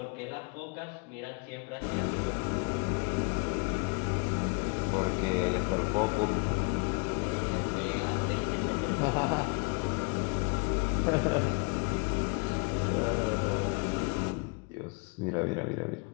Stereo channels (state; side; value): quieter; right; 34.3 dB